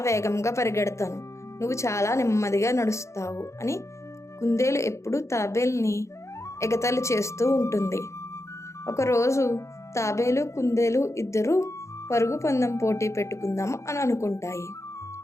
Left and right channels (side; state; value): right; late; 0.14 ms